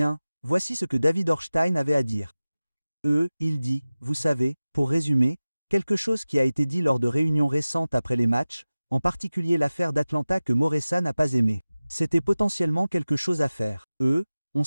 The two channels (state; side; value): inverted; both; correlation -0.97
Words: voici ce que David Ornstein avait à dire. Il dit, vous savez, pour résumer, quelque chose qui a été dit lors de réunions récentes après les matchs, en particulier l'affaire d'Atlanta que Moreira n'a pas aimé. C'était potentiellement quelque chose à faire. On